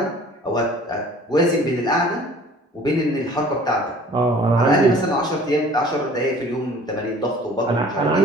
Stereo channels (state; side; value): normal; both; correlation 0.50